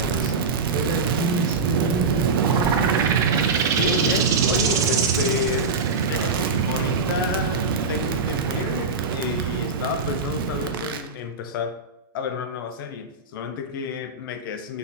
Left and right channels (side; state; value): left; quieter; 4.0 dB